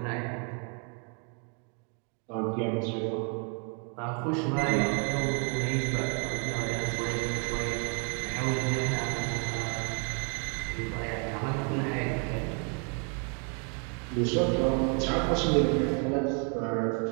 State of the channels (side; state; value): left; quieter; 38.4 dB